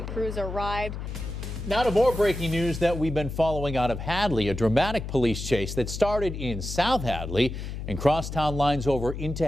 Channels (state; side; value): noise; left; hum, 7 dB below the sound